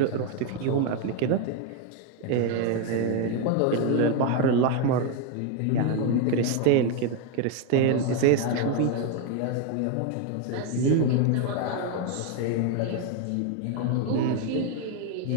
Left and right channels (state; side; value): different; both; correlation 0.01